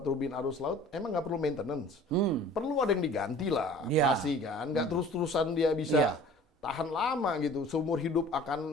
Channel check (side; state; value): both; normal; correlation 0.47